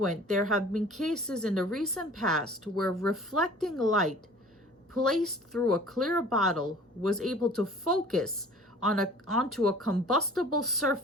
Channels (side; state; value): both; normal; correlation 0.47